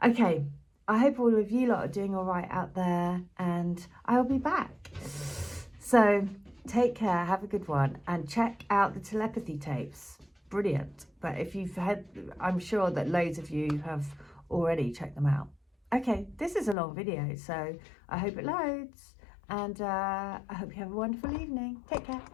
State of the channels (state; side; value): drops out; right; at 16.8 s